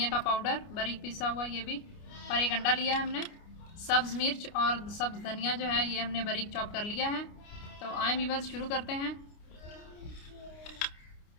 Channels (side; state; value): right; late; 29 ms